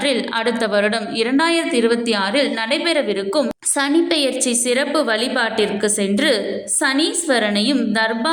அடுத்த வருடம் 2026 நடைபெறவிருக்கும் சனி பெயர்ச்சி சிறப்பு வழிபாட்டிற்கு சென்று சனீஸ்வரனையும்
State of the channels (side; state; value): both; identical; correlation 1.00